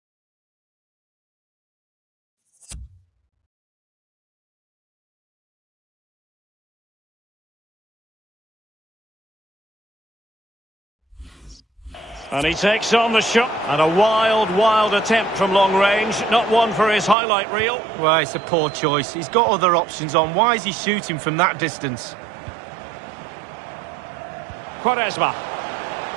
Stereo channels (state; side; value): drops out; left; at 17.2 s